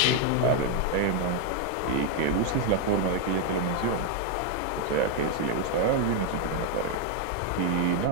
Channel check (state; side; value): different; both; correlation 0.01